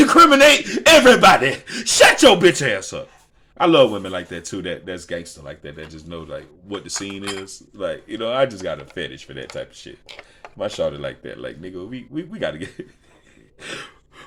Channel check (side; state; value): both; identical; correlation 1.00